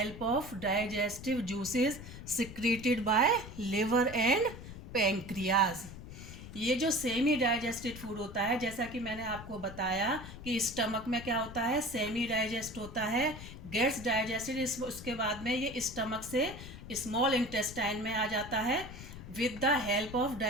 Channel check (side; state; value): left; noise; rumble, 13 dB below the sound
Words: of digestive juices secreted by liver and pancreas. ये जो सेमी डाइजेस्टेड फूड होता है, जैसा कि मैंने आपको बताया कि स्टमक में क्या होता है, सेमी डाइजेस्ट होता है, गेट्स डाइजेस्टेड, उसके बाद में ये स्टमक से स्मॉल इंटेस्टाइन में आ जाता है with the help of